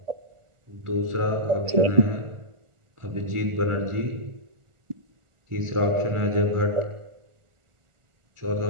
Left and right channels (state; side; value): late; left; 1.4 ms